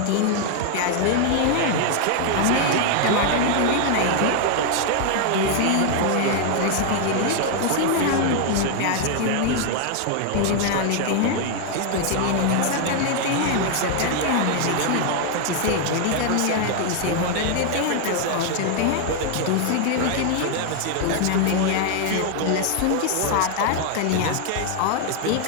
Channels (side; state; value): both; different; correlation 0.00